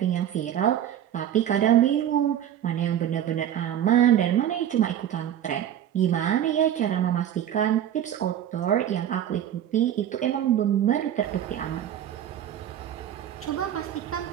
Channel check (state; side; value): quieter; left; 10.5 dB